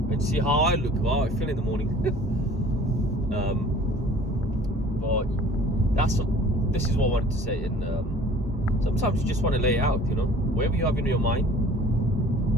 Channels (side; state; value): both; normal; correlation 0.49